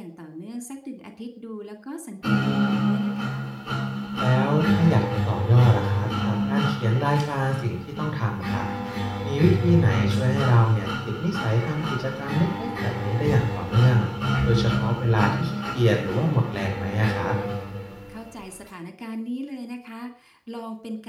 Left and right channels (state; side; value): identical; both; correlation 1.00